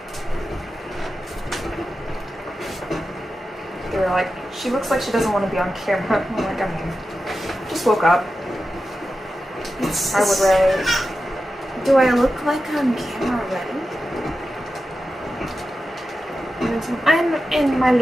She looks like she doesn't want to be on camera. I'm like, I mean, just woke up. I would rather. Do I look like on camera already? I'm in my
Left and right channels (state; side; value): normal; both; correlation 0.91